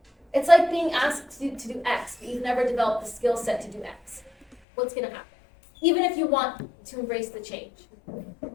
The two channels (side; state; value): right; drops out; at 4.5 s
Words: It's like being asked to do X, but you've never developed the skill set to do X. What's going to happen? Even if you want to embrace the change.